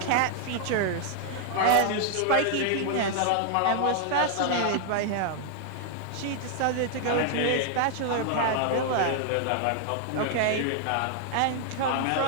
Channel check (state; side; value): different; both; correlation 0.00